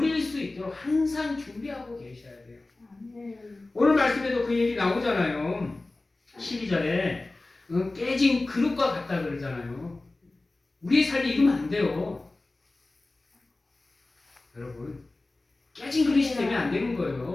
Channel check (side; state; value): right; quieter; 3.1 dB